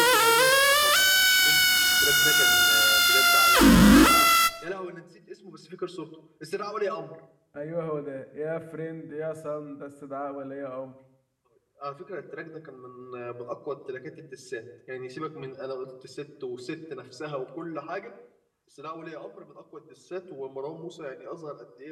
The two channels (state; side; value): identical; both; correlation 1.00